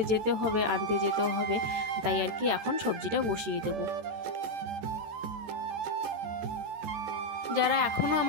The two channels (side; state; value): left; late; 13 ms